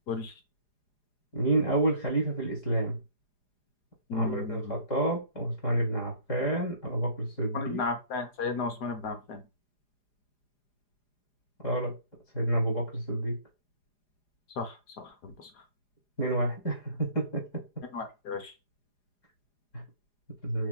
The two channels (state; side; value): late; right; 4.9 ms